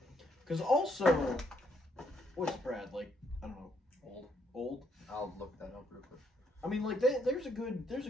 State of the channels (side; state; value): both; normal; correlation 0.73